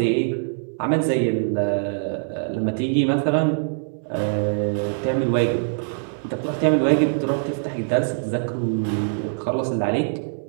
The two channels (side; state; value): left; silent; digital silence